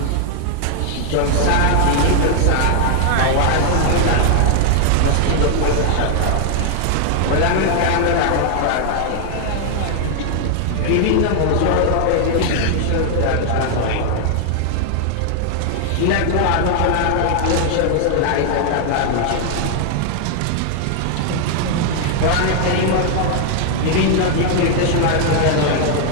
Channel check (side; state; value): both; different; correlation 0.00